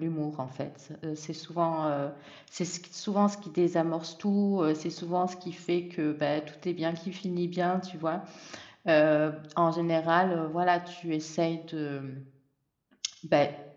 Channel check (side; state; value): both; identical; correlation 1.00